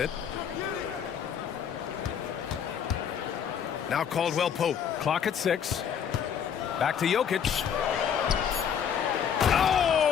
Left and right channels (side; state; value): right; quieter; 7.9 dB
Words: Now Caldwell Pope. Clock at 6. Back to Jokic.